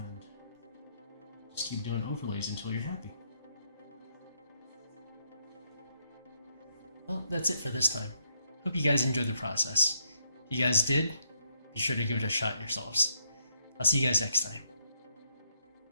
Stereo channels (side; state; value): both; inverted; correlation -0.75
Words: just keep doing overlays until you're happy. Well, that's it for this time. Hope you guys enjoyed the process. If you guys did, be sure to give it a shot yourselves. I'll see you guys next time.